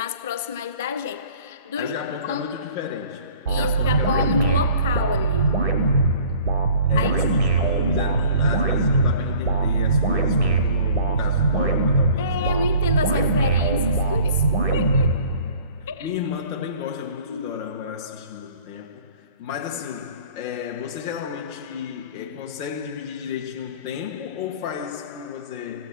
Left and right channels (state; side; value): inverted; both; correlation -0.49